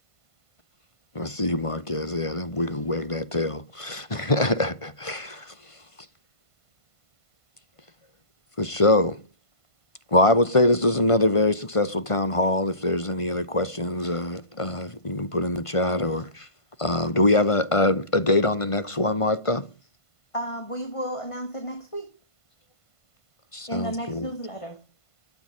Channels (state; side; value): late; right; 1.5 ms